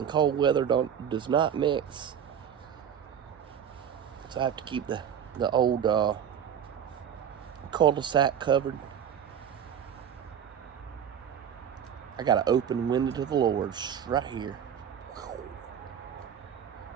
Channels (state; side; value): quieter; left; 8.7 dB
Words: cold weather does not mix. So I have to keep the old cul-de-sac covered. I got an open window to the Lord's right here.